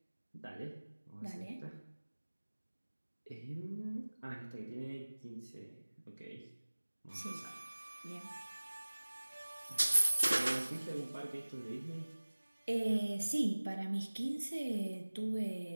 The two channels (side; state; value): both; inverted; correlation -1.00